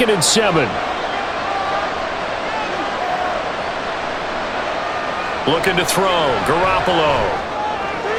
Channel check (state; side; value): identical; both; correlation 1.00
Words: and 7. Looking to throw, Garoppolo.